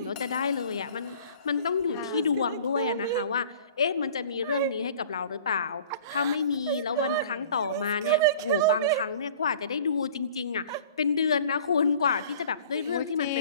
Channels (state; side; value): inverted; both; correlation -0.48